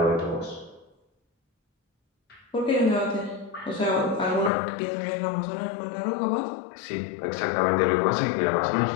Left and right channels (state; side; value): drops out; right; at 4.5 s